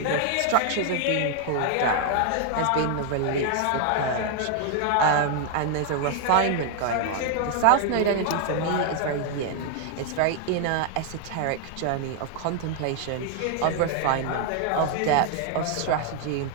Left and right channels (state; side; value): different; both; correlation 0.00